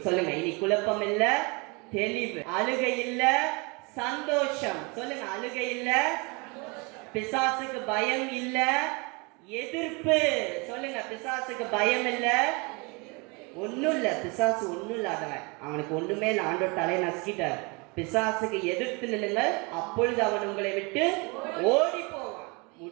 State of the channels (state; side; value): quieter; left; 29.3 dB